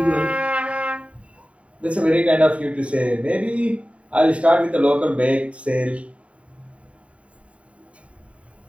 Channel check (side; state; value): left; late; 0.064 ms